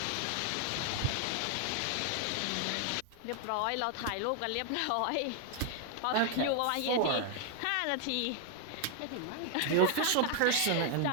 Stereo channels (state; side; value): different; both; correlation 0.00